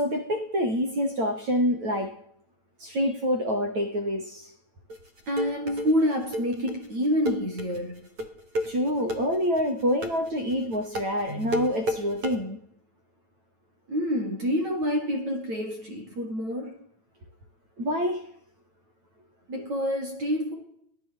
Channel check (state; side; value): late; left; 9.0 ms